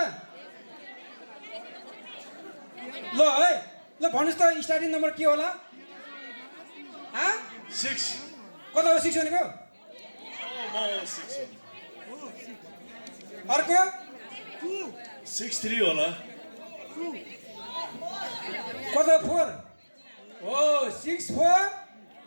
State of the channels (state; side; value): inverted; both; correlation -1.00